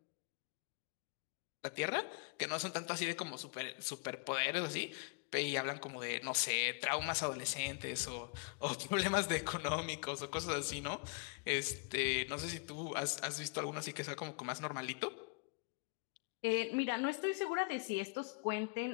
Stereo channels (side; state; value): right; quieter; 33.9 dB